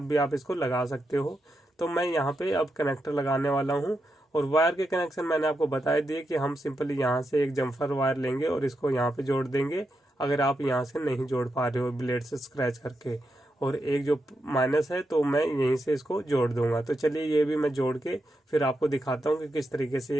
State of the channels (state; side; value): normal; both; correlation 0.85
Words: भी आप इसको लगा सकते हो। तो मैं यहाँ पे अब कनेक्टर लगाने वाला हूँ, और वायर के कनेक्शन मैंने आपको बता दिए कि हम सिंपली यहाँ से एक जम्फर वायर लेंगे और इसको यहाँ पे जोड़ देंगे, अगर आप यहाँ से नहीं जोड़ पा रहे हो ब्लेड से स्क्रैच करके, और एक जो माइनस है तो मैं यहीं से इसको जोड़ दूंगा। तो चलिए ये भी मैं जोड़ के फिर आपको दिखाता हूँ कि किस तरीके से